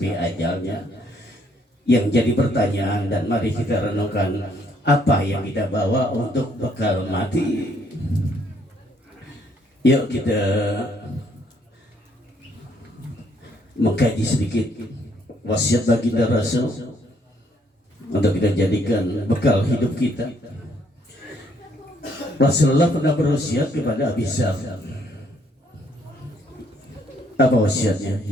ajalnya. Yang jadi pertanyaan, dan mari kita renungkan, apa yang kita bawa untuk bekal mati? Yuk kita mengkaji sedikit wasiat baginda Rasul untuk kita jadikan bekal hidup kita. Rasulullah pernah berwasiat kepada Abi Dzar. Apa wasiatnya?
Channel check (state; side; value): normal; both; correlation 0.68